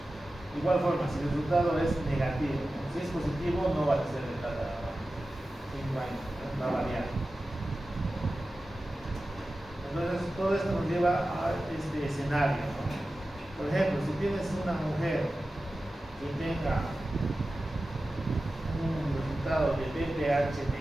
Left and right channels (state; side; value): normal; both; correlation 0.94